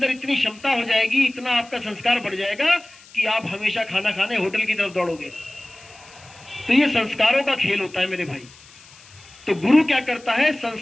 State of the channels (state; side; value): noise; left; hiss, 23 dB below the sound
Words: इतनी क्षमता हो जाएगी, इतना आपका संस्कार बढ़ जाएगा कि आप हमेशा खाना खाने होटल की तरफ दौड़ोगे। तो ये संस्कारों का खेल होता है मेरे भाई। तो गुरु क्या करता है,